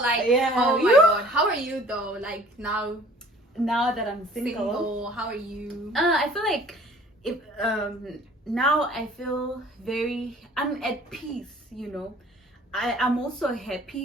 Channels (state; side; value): normal; both; correlation 0.52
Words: like, Yeah. oh my god, how are you though? Like now, Now that I'm single, how are you? I feel like if now I feel I'm at peace, you know. I'm also